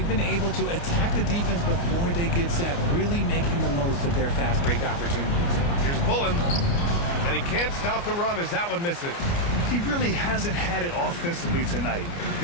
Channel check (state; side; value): late; right; 29 ms